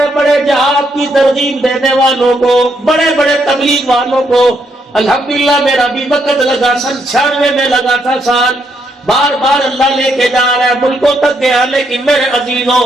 بڑے جہاد کی ترغیب دینے والوں کو، بڑے بڑے تبلیغ والوں کو الحمدللہ میرا بھی وقت لگا، 96 میں لگا تھا سال، بار بار اللہ لے کے جا رہا ہے، ملکوں تک گیا، لیکن میرے عزیزوں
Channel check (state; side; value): normal; both; correlation 0.75